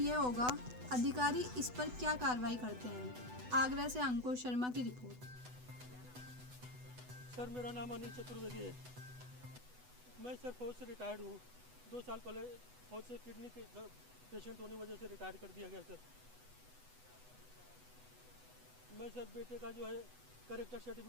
यह होगा अधिकारी इस पर क्या कार्रवाई करते हैं। आगरा से अंकुर शर्मा की रिपोर्ट। सर, मेरा नाम अनिल चतुर्वेदी है। मैं सर फौज से रिटायर्ड हूँ। 2 साल पहले फौज से किडनी के पेशेंट होने वजह से रिटायर कर दिया गया। सर मैं सर बेटे का जो है करेक्टर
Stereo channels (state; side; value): late; left; 8.0 ms